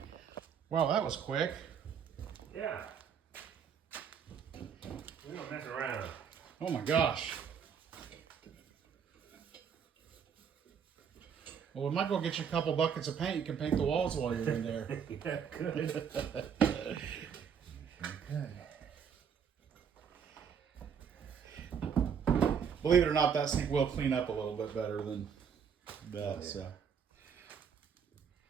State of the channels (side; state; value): left; quieter; 7.2 dB